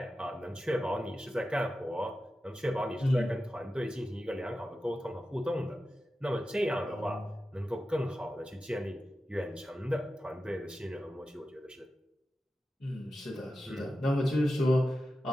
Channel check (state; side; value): normal; both; correlation 0.92